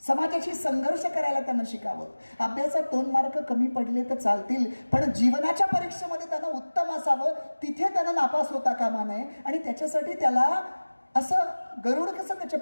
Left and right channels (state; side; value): inverted; both; correlation -1.00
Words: समाजाशी संघर्ष करायला त्यांना शिकावं. अभ्यासात 2 मार्क कमी पडले तर चालतील, पण जीवनाच्या परीक्षेमध्ये त्यांना उत्तम असावं, तिथे त्यांना नापास होता कामा नये. आणि त्याच्यासाठी त्याला असं गरुड कसं त्याच्या